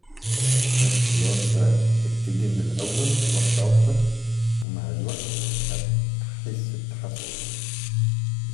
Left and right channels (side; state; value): right; drops out; at 4.7 s